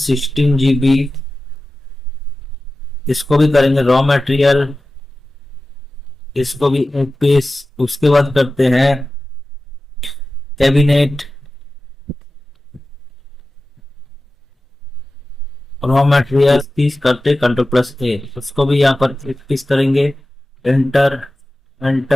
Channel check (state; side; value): normal; both; correlation 0.95